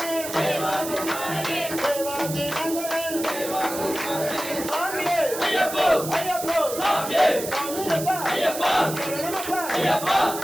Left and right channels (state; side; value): noise; right; hiss, 8 dB below the sound